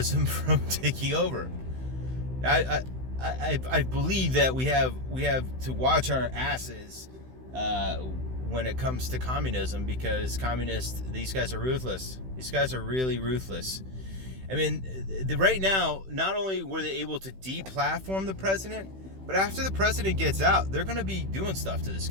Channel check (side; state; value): left; late; 16 ms